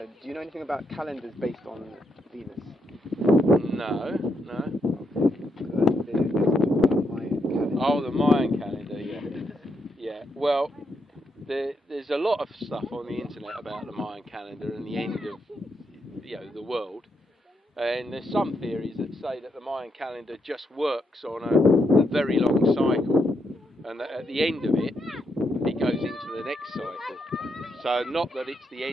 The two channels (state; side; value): normal; both; correlation 0.80